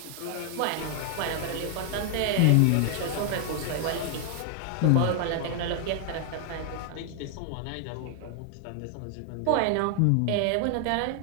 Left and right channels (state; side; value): different; both; correlation 0.00